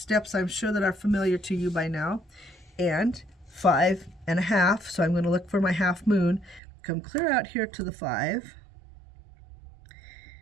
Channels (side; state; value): left; drops out; at 6.6 s